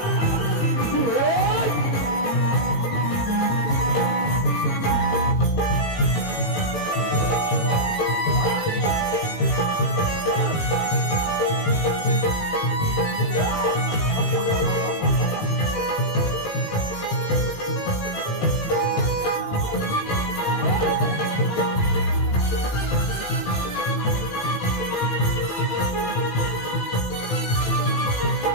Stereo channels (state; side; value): late; right; 18 ms